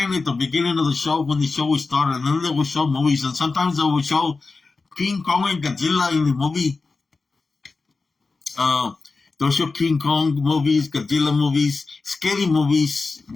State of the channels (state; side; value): quieter; right; 4.0 dB